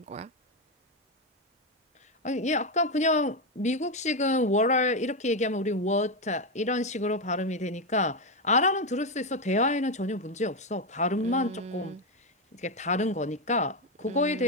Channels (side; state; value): both; normal; correlation 0.08